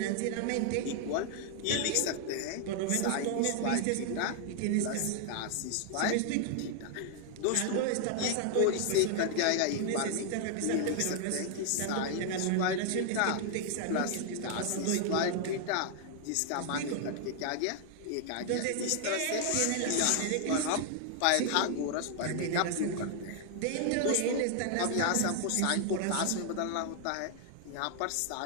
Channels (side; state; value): both; different; correlation 0.00